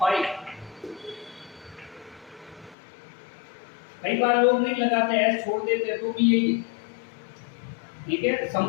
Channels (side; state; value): right; drops out; at 2.8 s